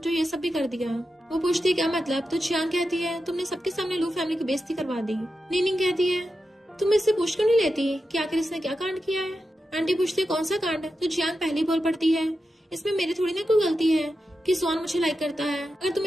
ये सब भी कर दिया। वो पूछती है क्या मतलब। तो जियांग कहती है तुमने सबके सामने लू फैमिली की बेइज्जती करवा दी। निंगनिंग कहती है तुम इससे पूछ क्यों नहीं लेती कि आखिर इसने क्या कांड किया है। आंटी पूछती है कौन सा कांड। तो जियांग पहली बोल पड़ती है इसमें मेरी थोड़ी ना कोई गलती है कि जुआन मुझे लाइक करता है, अगर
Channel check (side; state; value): both; normal; correlation 0.90